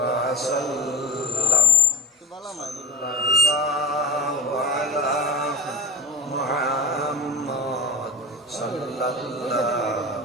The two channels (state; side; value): normal; both; correlation 0.36